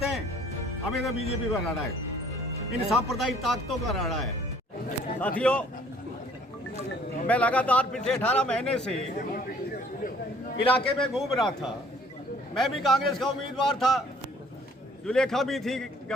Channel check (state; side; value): normal; both; correlation 0.57